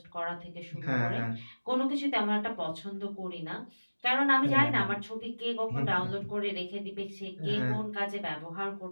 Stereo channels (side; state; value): both; inverted; correlation -1.00